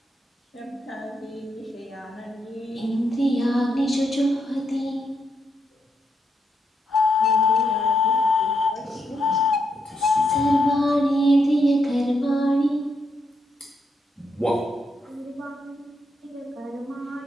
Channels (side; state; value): both; normal; correlation 0.80